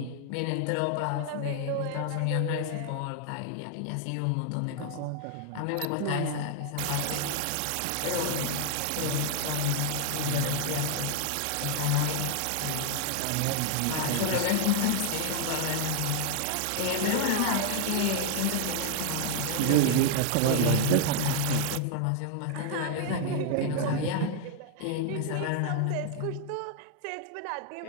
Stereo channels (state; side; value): different; both; correlation 0.00